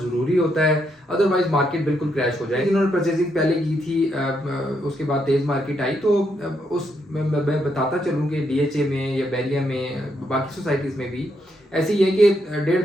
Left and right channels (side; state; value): both; normal; correlation 0.78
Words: होता है, अदरवाइज मार्केट बिल्कुल क्रैश हो जाएगी। जिन्होंने परचेजिंग पहले की थी उसके बाद तेज़ मार्केट आई, तो उस मैं बताता चलूँ कि डीएचए में या बैरिया में बाकी सोसाइटीज़ में भी ऐसी है कि